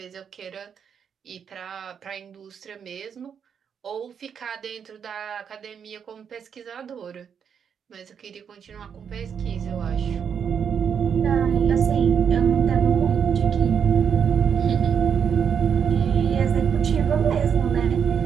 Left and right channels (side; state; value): left; quieter; 7.4 dB